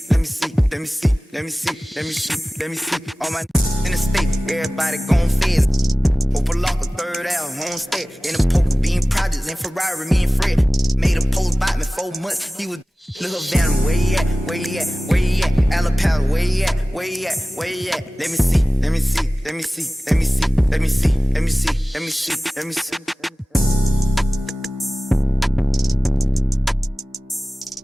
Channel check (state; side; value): normal; both; correlation 0.97